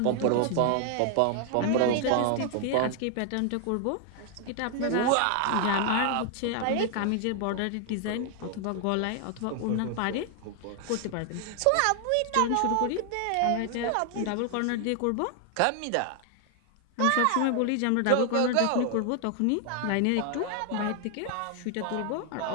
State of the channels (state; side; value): different; both; correlation 0.00